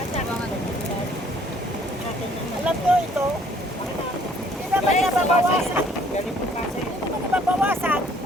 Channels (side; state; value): both; normal; correlation 0.60